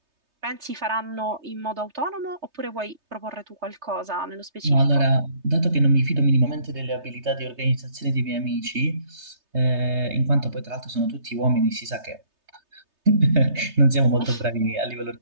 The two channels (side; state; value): left; late; 3.3 ms